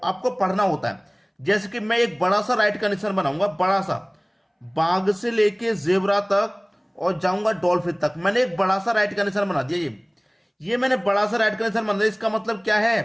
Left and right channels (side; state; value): both; identical; correlation 1.00